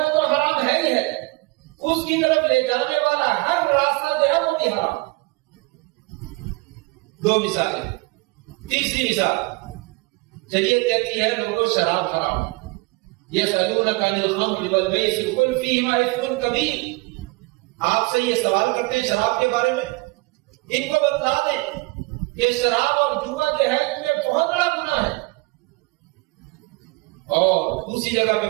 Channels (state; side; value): quieter; left; 25.6 dB